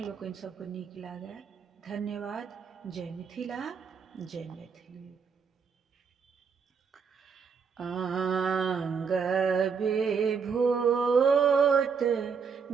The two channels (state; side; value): quieter; left; 6.0 dB